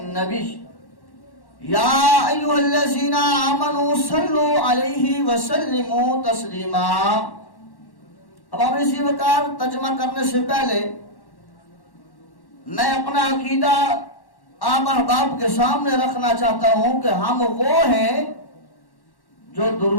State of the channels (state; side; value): late; right; 1.1 ms